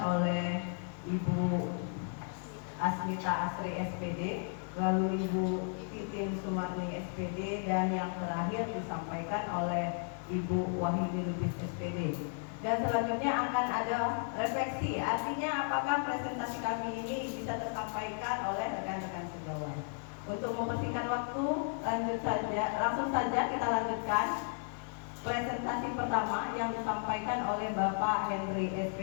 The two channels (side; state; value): right; silent; 55 dB below the other